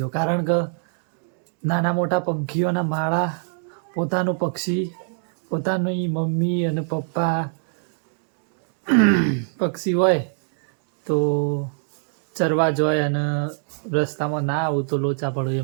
કારણ કે નાના મોટા પંખીઓના માળા, પોતાનું પક્ષી, પોતાની મમ્મી અને પપ્પા પક્ષી હોય તો ચરવા જોઈએ અને રસ્તામાં ના આવું તો લોચા પડો,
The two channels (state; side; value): silent; left; 63 dB below the other